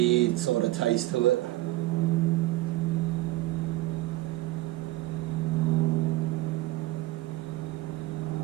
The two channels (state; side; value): quieter; left; 17.7 dB